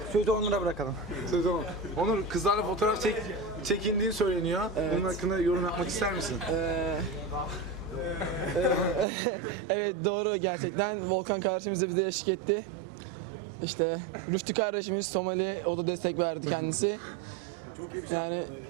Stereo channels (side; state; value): left; drops out; at 9.1 s